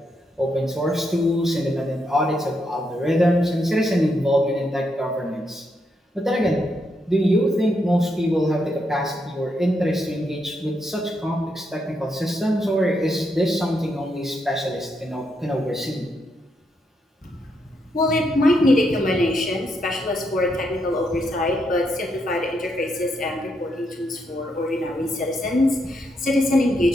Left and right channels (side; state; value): both; normal; correlation 0.79